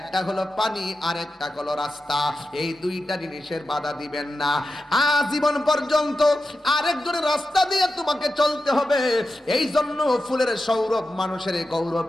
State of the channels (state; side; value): normal; both; correlation 0.91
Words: হলো পানি আর একটা হলো রাস্তা। এই দুইটা জিনিসের বাধা দিবেন না। আজীবন পর্যন্ত আরেকজনের রাস্তা দিয়ে তোমাকে চলতে হবে। এই জন্য ফুলের সৌরভ মানুষের গৌরব